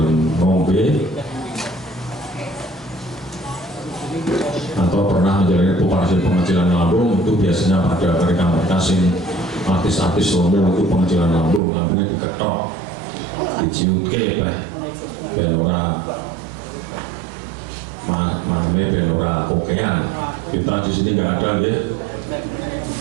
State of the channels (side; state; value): left; drops out; at 11.6 s